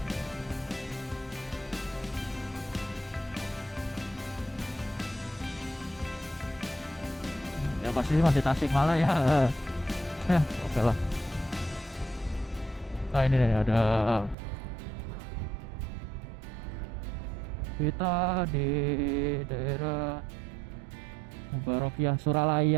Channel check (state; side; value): drops out; left; at 14.4 s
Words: pasti sih masih Tasikmalaya ya. Ya oke lah. Nah ini nih ada, kita di daerah Mubarakiyah